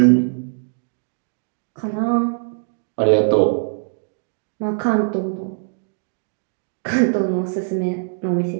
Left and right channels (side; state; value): left; silent; digital silence